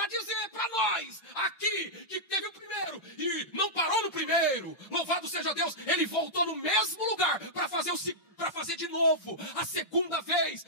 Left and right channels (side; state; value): right; late; 5.7 ms